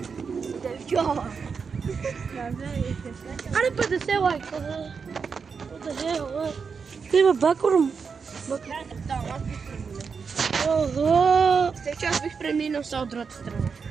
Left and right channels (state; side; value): quieter; left; 5.6 dB